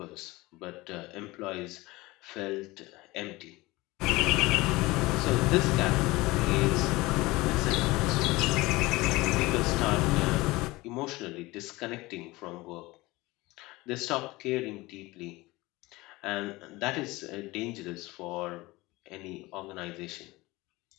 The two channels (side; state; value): right; quieter; 21.0 dB